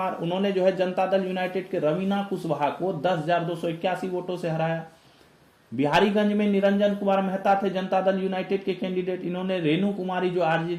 उन्होंने जो है जनता दल यूनाइटेड के रवीना कुशवाहा को 10,281 वोटों से हराया। बिहारीगंज में निरंजन कुमार मेहता थे जनता दल यूनाइटेड के कैंडिडेट, इन्होंने रेणु कुमारी जो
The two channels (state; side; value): identical; both; correlation 1.00